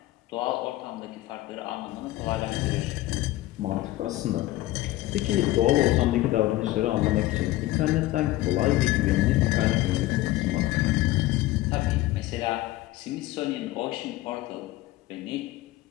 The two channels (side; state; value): right; quieter; 16.8 dB